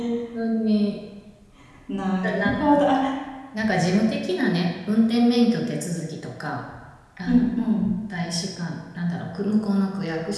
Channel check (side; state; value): both; identical; correlation 1.00